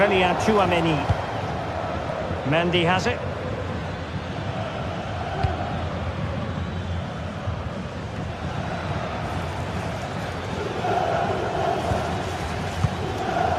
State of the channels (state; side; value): identical; both; correlation 1.00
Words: Tchouaméni. Mendy has it.